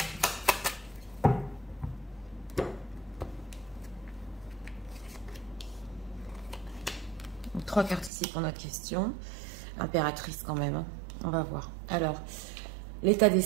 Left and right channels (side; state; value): left; drops out; at 8.1 s